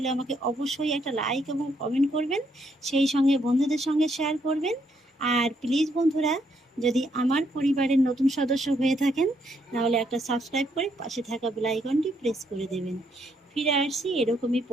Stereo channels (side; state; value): both; normal; correlation 0.74